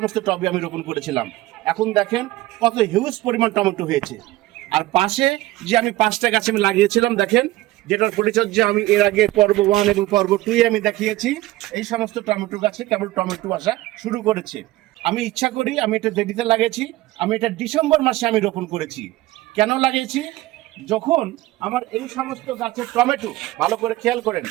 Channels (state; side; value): quieter; left; 17.4 dB